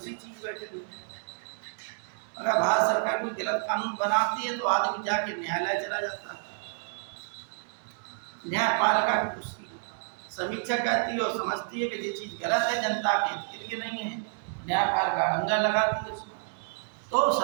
चीज बैठेगी। अगर भारत सरकार कोई गलत कानून बनाती है तो आदमी जाके न्यायालय चला जाता है, न्यायपालिका की उसकी समीक्षा करती है और समझती है कि ये चीज गलत है, जनता के हित के लिए नहीं है, न्यायपालिका अंगा लगाती है उसमें। तो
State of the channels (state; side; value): silent; left; digital silence